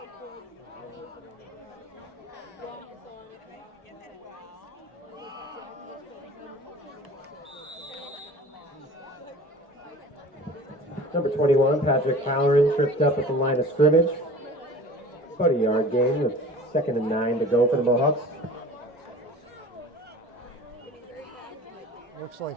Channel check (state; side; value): normal; both; correlation 0.42